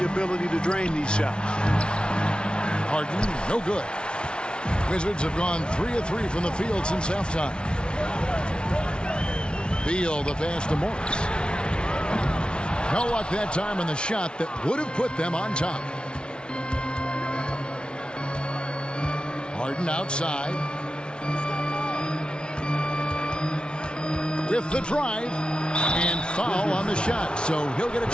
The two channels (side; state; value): right; late; 0.056 ms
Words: ability to drain these shots. Harden, no good. Wizards have gone 3 of 3 from the field since halftime. Beal, the pass to Morris. No luck that time on the shot that would have put them on top. Harden outside. With the drive. And foul on the shot, so he'll get